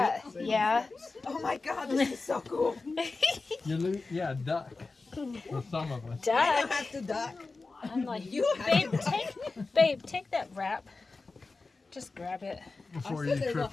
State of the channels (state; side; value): quieter; right; 3.8 dB